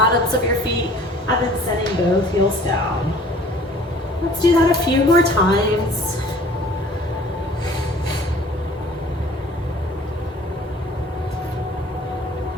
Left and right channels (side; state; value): both; normal; correlation 0.50